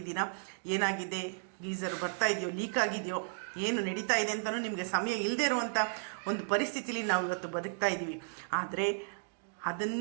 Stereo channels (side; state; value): left; silent; digital silence